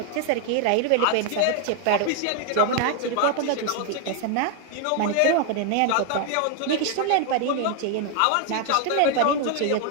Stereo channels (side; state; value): both; different; correlation 0.00